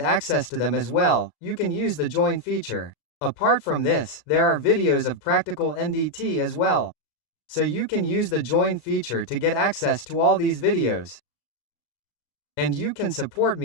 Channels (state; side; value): late; right; 35 ms